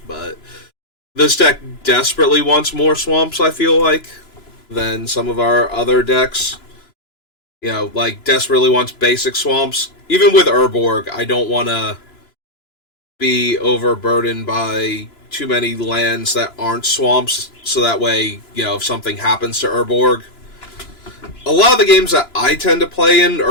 but this deck desperately wants more swamps, I feel like, than some of our other decks. You know, like, desperately wants basic swamps. Even with Urborg, I don't want to be overburdened by too many lands that aren't swamps, so that way, you know, if something happens to Urborg... A lot of the games that I tend to play in,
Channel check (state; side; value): late; right; 2.9 ms